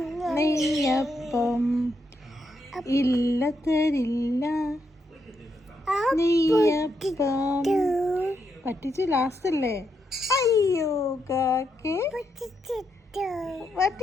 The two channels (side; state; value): both; normal; correlation 0.80